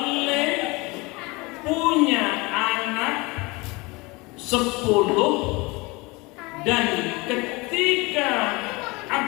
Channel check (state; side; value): quieter; right; 24.9 dB